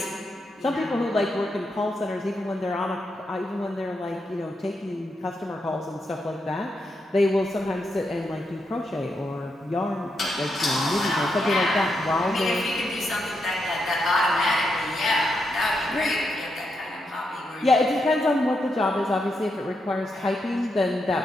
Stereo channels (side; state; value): both; normal; correlation 0.83